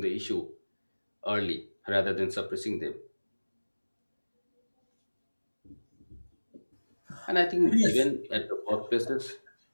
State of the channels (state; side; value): inverted; both; correlation -1.00